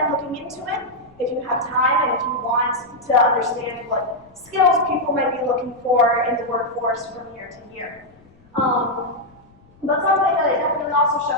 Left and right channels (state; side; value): noise; left; rumble, 30 dB below the sound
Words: looking into it if you have time and if you want to understand what skills people might be looking for in the workforce from year to year. But something that it definitely also